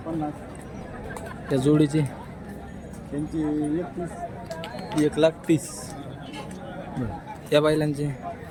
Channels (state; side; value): identical; both; correlation 1.00